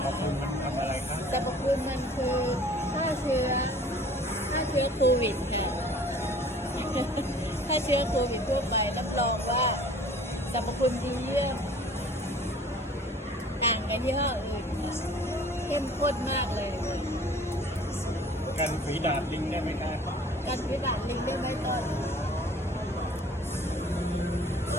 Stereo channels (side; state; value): both; normal; correlation 0.50